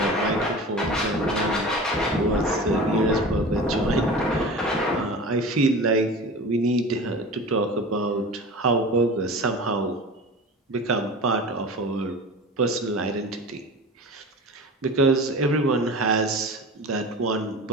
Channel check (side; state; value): both; normal; correlation 0.34